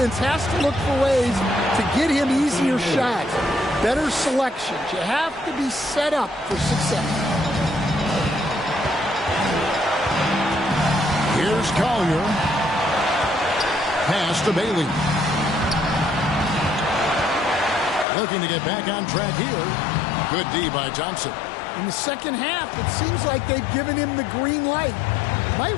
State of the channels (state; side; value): drops out; right; at 18.1 s